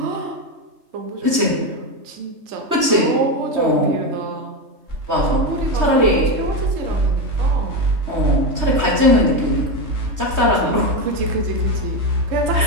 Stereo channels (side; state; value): left; late; 3.2 ms